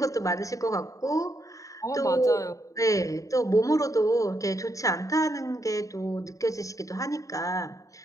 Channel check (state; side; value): late; right; 0.16 ms